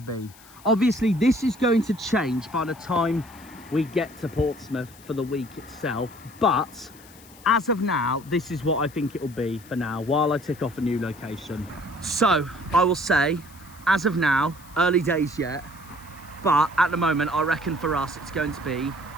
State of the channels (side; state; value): left; noise; hiss, 23 dB below the sound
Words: be. Obviously this is going to change by the time we get to Portsmouth for the week itself, but as of now, this is what I think it will be for now while I tick off a new location. So I will say, as of now, early days yet, but at the moment, I reckon for us, it's going to be